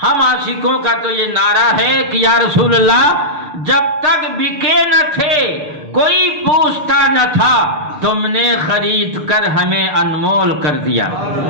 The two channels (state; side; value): late; left; 6.7 ms